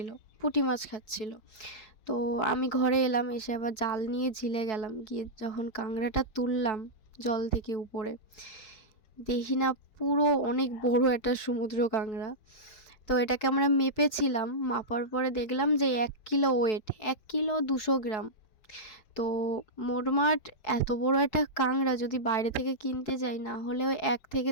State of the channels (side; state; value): right; late; 4.6 ms